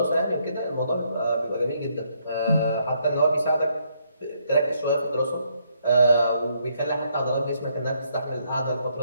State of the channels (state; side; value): inverted; both; correlation -0.73